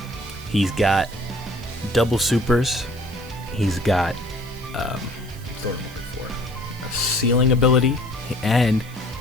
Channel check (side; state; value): right; noise; hiss, 22 dB below the sound